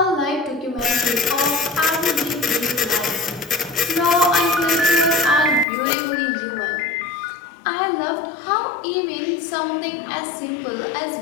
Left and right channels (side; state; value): right; drops out; at 5.7 s